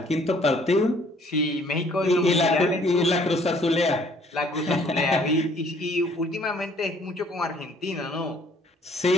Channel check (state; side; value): normal; both; correlation 0.59